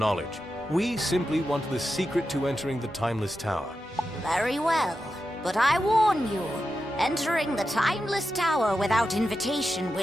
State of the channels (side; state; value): both; normal; correlation 0.90